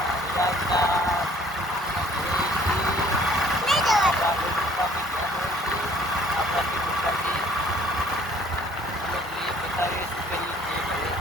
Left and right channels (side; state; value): both; normal; correlation 0.57